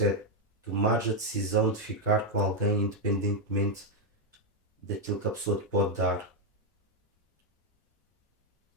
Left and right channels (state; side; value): normal; both; correlation 0.02